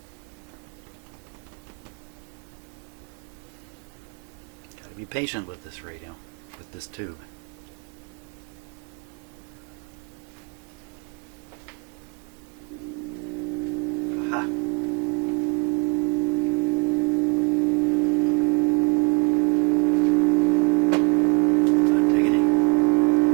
patient with this radio, with this tube. Aha. Hot diggity.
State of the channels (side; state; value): left; quieter; 32.0 dB